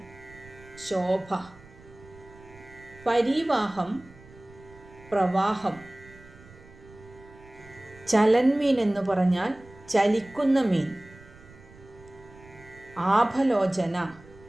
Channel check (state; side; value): noise; right; rumble, 22 dB below the sound